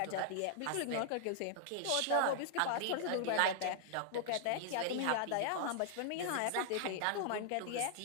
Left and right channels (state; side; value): different; both; correlation -0.01